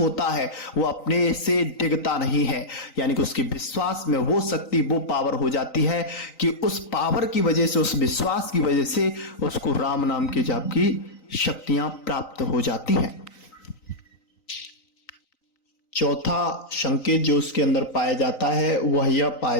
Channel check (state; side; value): late; right; 3.9 ms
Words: है, वो अपने से डिगता नहीं है। यानी कि उसके विश्वास में वो शक्ति, वो पावर हो जाती है कि उस पावर की वजह से, उस विश्वास की वजह से उसको राम नाम के जाप की शक्तियां प्राप्त हो जाती हैं। चौथा संकेत जो उसके अंदर पाया जाता है, वह यह पाया